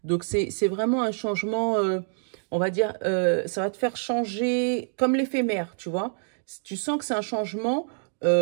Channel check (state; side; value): silent; left; digital silence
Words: Donc, c'est vraiment un changement, on va dire, ça va te faire changer comme l'éphémère, tu vois. Tu sens que c'est un changement